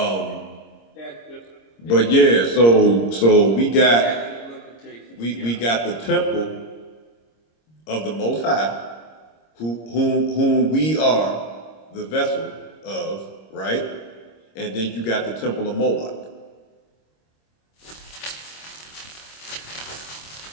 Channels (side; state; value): right; late; 26 ms